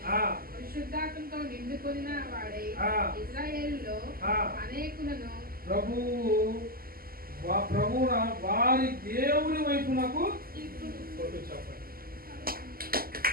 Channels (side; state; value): left; late; 0.42 ms